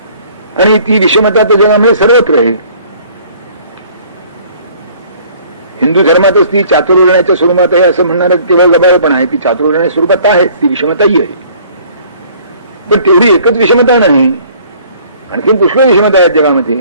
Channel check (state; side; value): inverted; both; correlation -0.55